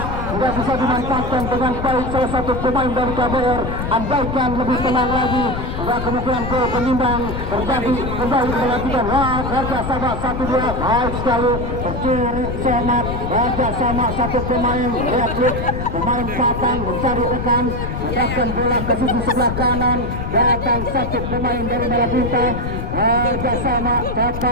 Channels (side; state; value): left; noise; rumble, 4 dB below the sound